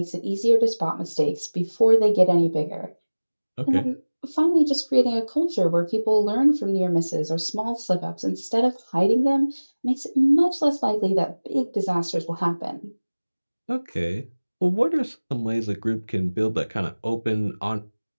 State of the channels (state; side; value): inverted; both; correlation -1.00